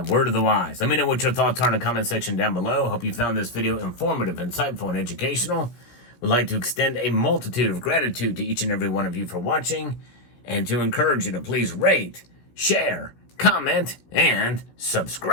word of the wise. Let me know what your thoughts are in the comment section down below. Hope you found this video informative, insightful, and educational. Would like to extend a multitude of gratitude to each and every one of you for watching, and to encourage you to please rate, share, comment, and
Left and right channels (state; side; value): late; right; 16 ms